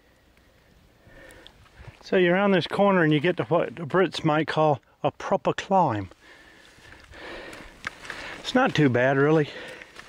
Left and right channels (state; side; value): identical; both; correlation 1.00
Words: So you're around this corner and you get to what the Brits might call a proper climb. It's not too bad, really,